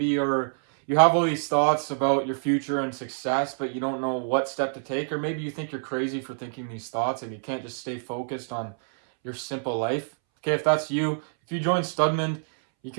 you have all these thoughts about your future and success, but you don't know what step to take, or maybe you think you're crazy for thinking these thoughts and you can't just stay focused on your simple life. Okay, if that's you, if you join Studman, you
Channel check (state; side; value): silent; left; 61 dB below the other